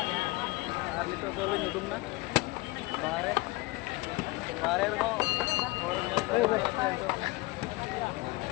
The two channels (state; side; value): quieter; right; 22.4 dB